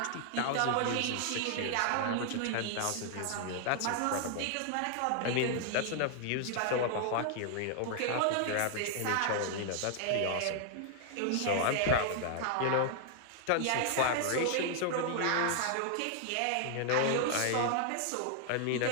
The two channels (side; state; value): both; different; correlation 0.00